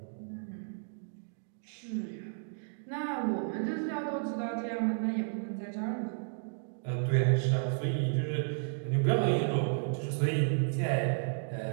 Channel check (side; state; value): left; silent; digital silence